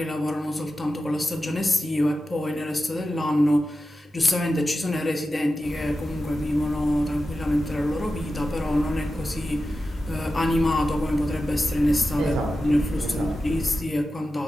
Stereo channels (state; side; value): normal; both; correlation 0.92